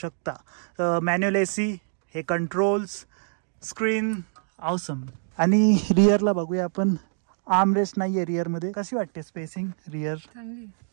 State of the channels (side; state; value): left; silent; digital silence